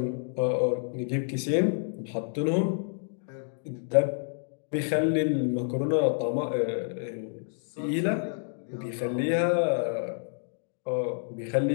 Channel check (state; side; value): silent; right; digital silence